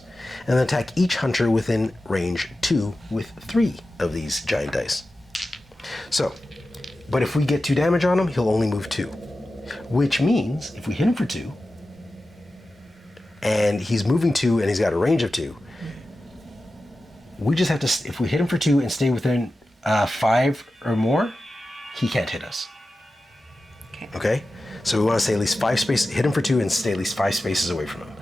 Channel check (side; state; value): both; normal; correlation 0.93